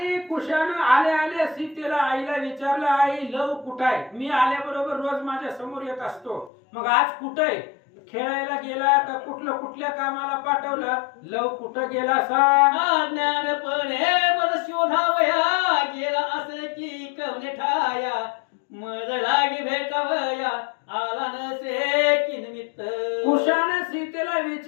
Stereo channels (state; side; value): drops out; right; at 6.5 s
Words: कुशानं आल्या आल्या सीतेला आईला विचारलं आई लव कुठं आहे? मी आल्याबरोबर रोज माझ्या समोर येत असतो, मग आज कुठं आहे? खेळायला गेला का कुठल्या कामाला पाठवलं? लव कुठं गेला सांग. अज्ञानपणे मज शोधावया गेला असे की कवने ठाया मज लागी भेटावया आला नसे की निमित्त. कुशाने सीतेला